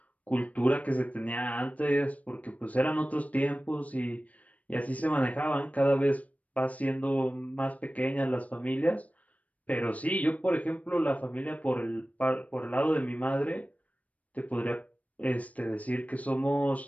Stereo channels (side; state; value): right; late; 0.069 ms